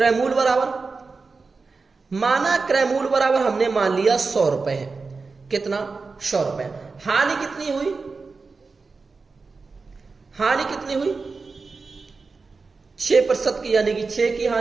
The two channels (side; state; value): left; quieter; 4.3 dB